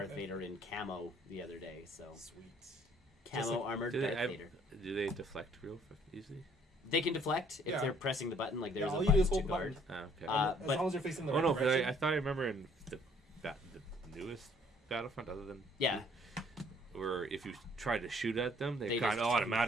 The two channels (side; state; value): both; normal; correlation 0.61